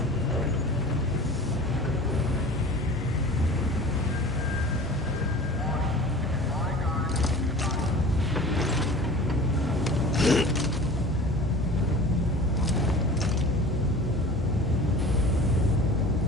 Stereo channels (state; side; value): normal; both; correlation 0.40